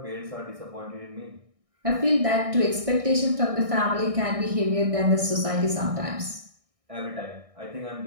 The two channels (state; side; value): late; left; 1.6 ms